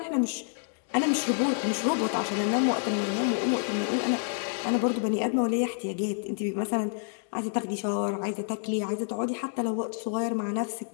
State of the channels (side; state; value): right; silent; 59 dB below the other